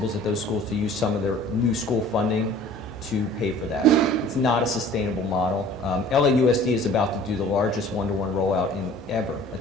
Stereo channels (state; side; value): normal; both; correlation 0.48